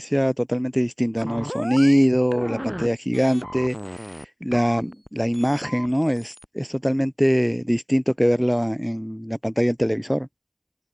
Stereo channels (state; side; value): identical; both; correlation 1.00